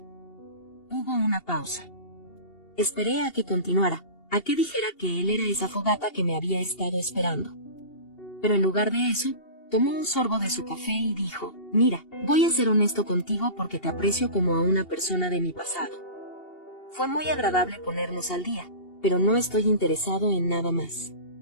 Hubo una pausa. Esperé a que continuara, a que dijera que él era esa fogata que me había estado esperando. Pero en lugar de eso, tomó un sorbo de su café y dijo, mira, voy a ser honesto contigo porque te aprecio como a una persona de mi pasado. Fue muy agradable ponernos al día, pero no estoy interesado en nada más.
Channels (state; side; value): late; right; 2.8 ms